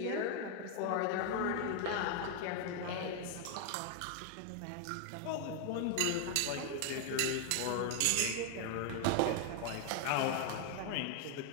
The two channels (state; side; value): different; both; correlation 0.01